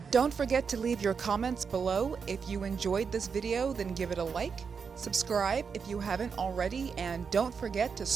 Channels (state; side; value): quieter; left; 5.9 dB